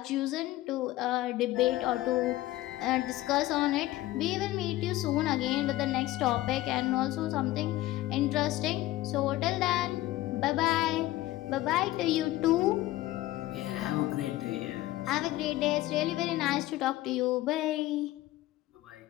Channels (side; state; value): right; quieter; 16.5 dB